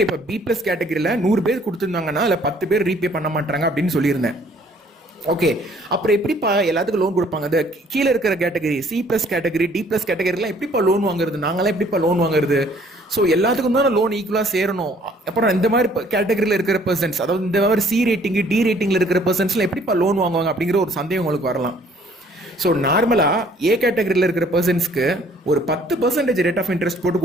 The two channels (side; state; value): both; normal; correlation 0.59